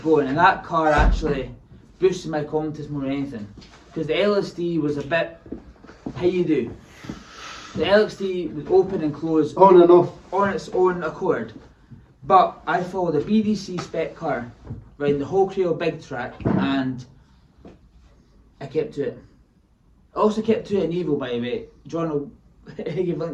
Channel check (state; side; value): identical; both; correlation 1.00